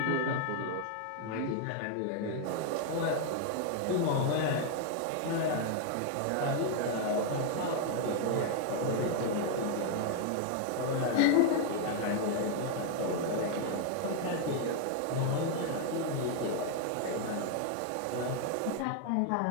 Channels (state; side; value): different; both; correlation 0.00